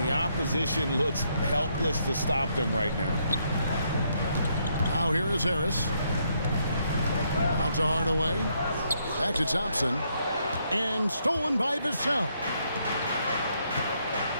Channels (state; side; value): inverted; both; correlation -0.75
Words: the opposition looks helpless to stop them right now. Now here is Harris. Out to Hardaway. Back to Thompson. And stolen by Vassell.